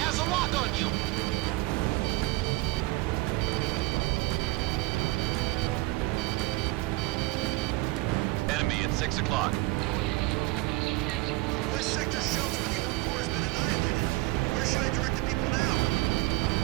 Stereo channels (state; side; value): quieter; left; 22.0 dB